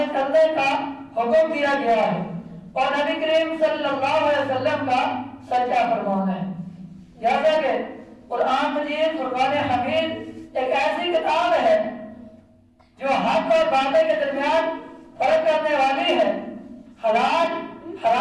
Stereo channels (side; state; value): both; identical; correlation 1.00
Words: چلنے کا حکم دیا گیا ہے، اور نبی کریم صلی اللہ علیہ وسلم کا سچا فرمان ہے۔ جیسا کہ قرآن مجید فرقان حمید ایک ایسی کتاب ہے جو حق اور باطل کے درمیان فرق کرنے والی ہے، حلال